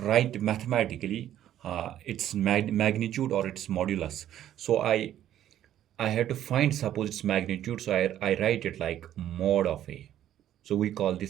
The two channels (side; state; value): left; quieter; 11.7 dB